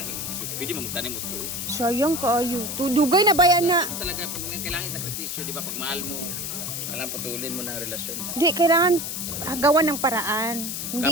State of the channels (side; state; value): left; noise; hiss, 4 dB below the sound